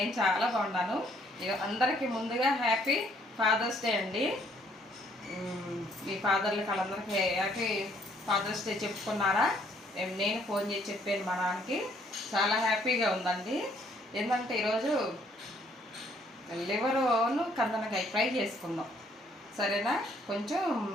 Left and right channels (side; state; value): both; normal; correlation 0.65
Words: చాలా బాగున్నాను. అందరికీ ముందుగా హ్యాపీ ఫాదర్స్ డే అండి. మీ ఫాదర్లకి వాళ్ళందరికీ హ్యాపీ ఫాదర్స్ డే చెప్పుకున్నారా? నేను ఫోన్ చేసి చెప్పాను మా నాన్నకి. చాలా హ్యాపీగా ఉందండి. ఏంటంటే ఈరోజు లివరును కందనకాయ ఫ్రై చేసుకుందాం, సరేనా? కొంచెం